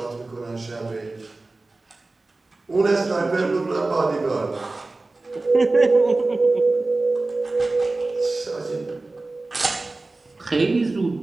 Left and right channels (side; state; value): left; quieter; 3.2 dB